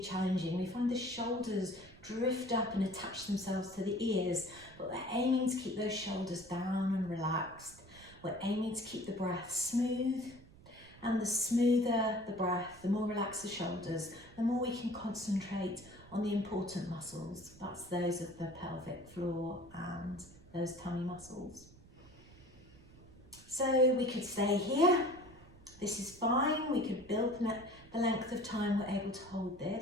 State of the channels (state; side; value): noise; right; rumble, 22 dB below the sound